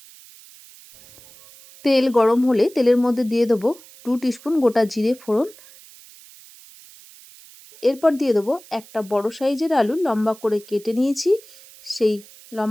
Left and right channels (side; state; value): right; noise; hiss, 22 dB below the sound